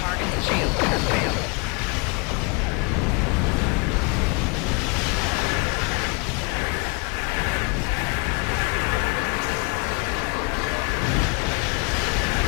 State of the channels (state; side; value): quieter; right; 33.0 dB